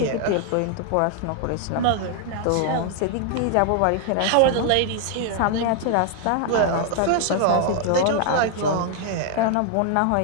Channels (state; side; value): different; both; correlation 0.00